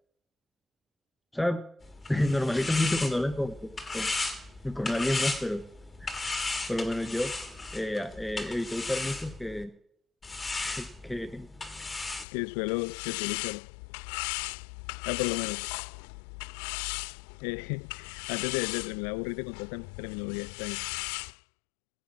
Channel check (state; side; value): drops out; right; at 12.2 s